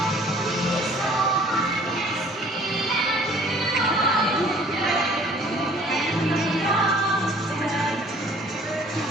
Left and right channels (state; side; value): normal; both; correlation 0.54